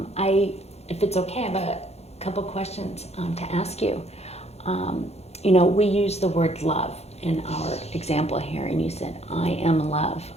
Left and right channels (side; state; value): right; late; 0.31 ms